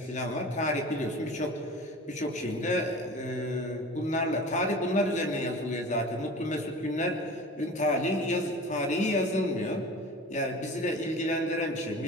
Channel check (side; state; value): both; normal; correlation 0.38